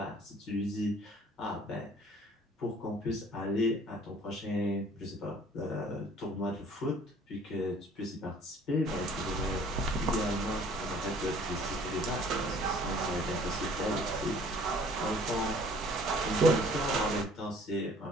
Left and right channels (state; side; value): normal; both; correlation 0.54